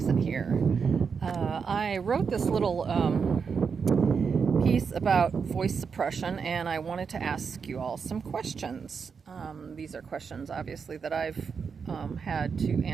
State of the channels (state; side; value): quieter; left; 5.9 dB